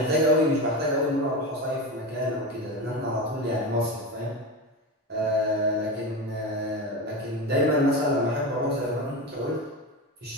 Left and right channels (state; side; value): normal; both; correlation 0.21